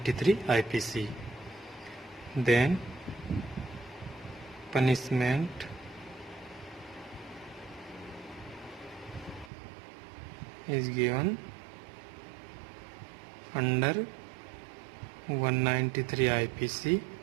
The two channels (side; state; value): left; drops out; at 9.5 s